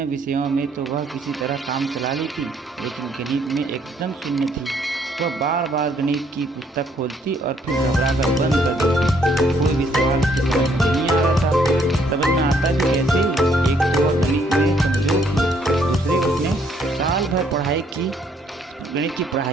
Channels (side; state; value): both; normal; correlation 0.67